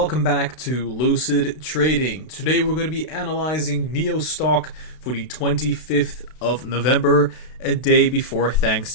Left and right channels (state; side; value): late; right; 32 ms